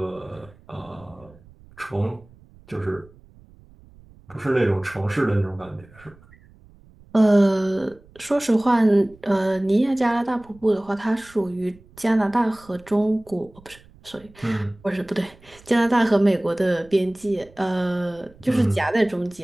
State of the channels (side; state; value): right; noise; rumble, 25 dB below the sound